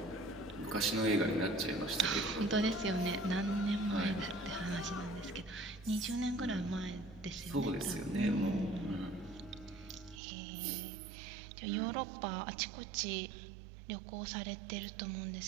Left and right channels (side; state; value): left; drops out; at 10.2 s